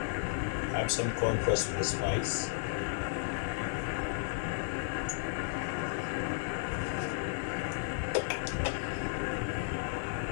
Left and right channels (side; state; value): right; silent; digital silence